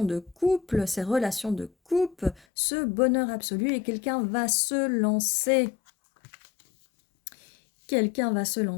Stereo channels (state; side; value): drops out; right; at 2.5 s